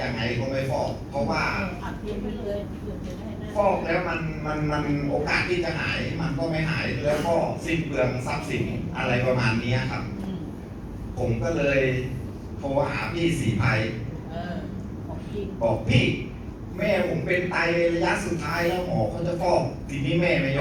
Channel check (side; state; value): both; identical; correlation 1.00